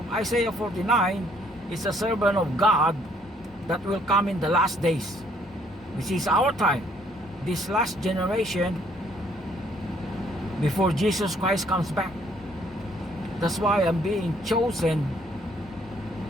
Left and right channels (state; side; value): normal; both; correlation 0.65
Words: Isaiah 49 is a servant of God that will come in the last days, which is our time, this last generation before Jesus Christ comes back. That's why I'm being chosen